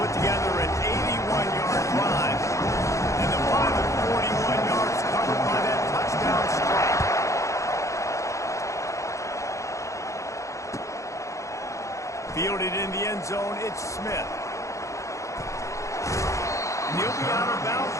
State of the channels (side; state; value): right; late; 0.15 ms